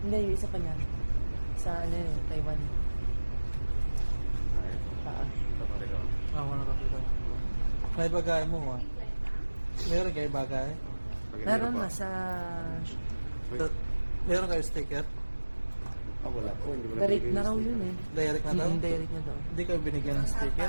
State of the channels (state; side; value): inverted; both; correlation -1.00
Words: Hindi, yung isa pa niyan. Sa ano yun, Taiwan. Taas. Ito pa rin ako. wala pakita. May bagay mo, Meron kayo bagay? Meron na sa... Meron kayo sticker? Wala po. Hindi mo Direct nabigay na yung raw sticker. yun eh. Direct na daw? Direct na daw. Hindi kayo binigyan ng